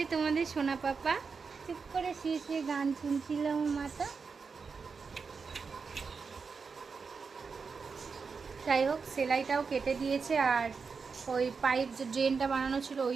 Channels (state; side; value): quieter; left; 5.2 dB